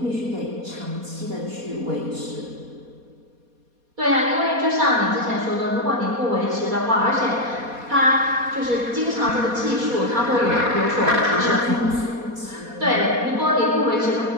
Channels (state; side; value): late; left; 4.2 ms